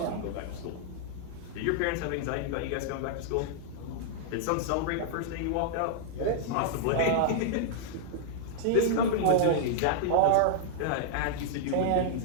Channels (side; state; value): both; different; correlation -0.01